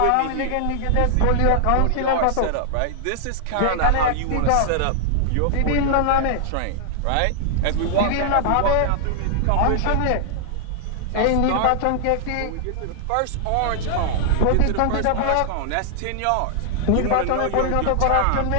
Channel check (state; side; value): different; both; correlation -0.01